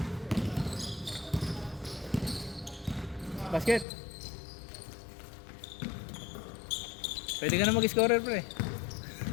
Basket? Pwede ka na mag-scorer, pre.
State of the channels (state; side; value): drops out; right; at 3.9 s